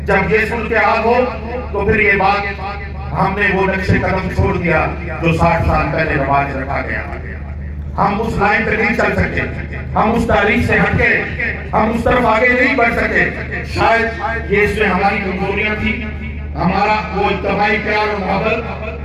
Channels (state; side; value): identical; both; correlation 1.00